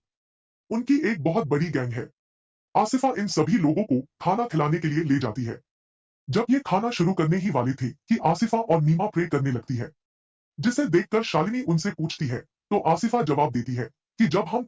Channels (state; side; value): identical; both; correlation 1.00